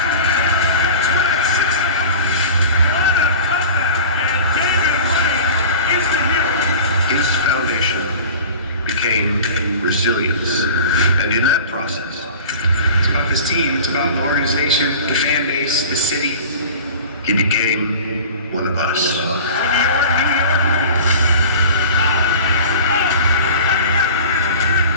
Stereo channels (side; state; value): both; inverted; correlation -0.38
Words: His foundation became resilience. And in that process, It's about this team, it's about the organization, the fan base, the city. he became one of us.